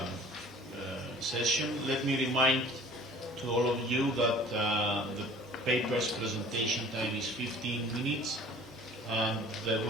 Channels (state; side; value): normal; both; correlation 0.48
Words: session. Let me remind to all of you that the paper's presentation time is 15 minutes, and there